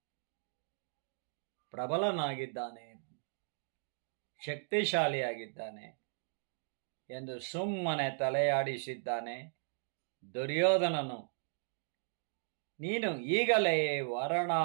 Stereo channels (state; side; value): silent; left; digital silence